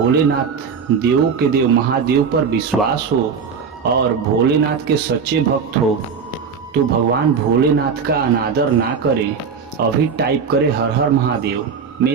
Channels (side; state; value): left; quieter; 6.0 dB